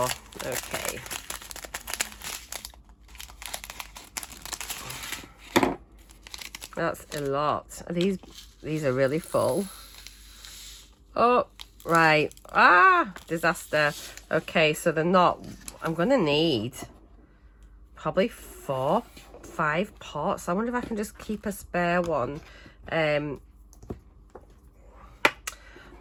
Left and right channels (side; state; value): both; identical; correlation 1.00